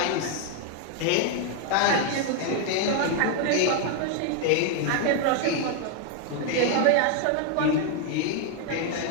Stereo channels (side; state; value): both; different; correlation 0.00